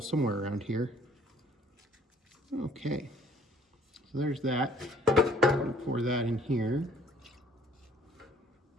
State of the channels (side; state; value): both; normal; correlation 0.58